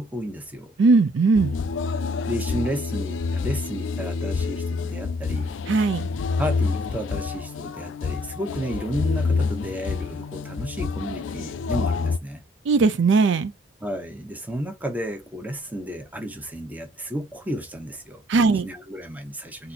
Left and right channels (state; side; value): normal; both; correlation 0.64